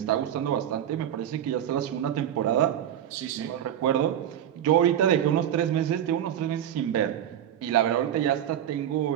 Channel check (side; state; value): left; quieter; 10.4 dB